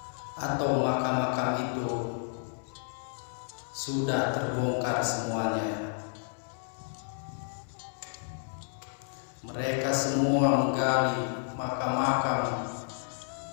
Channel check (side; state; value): right; silent; 57 dB below the other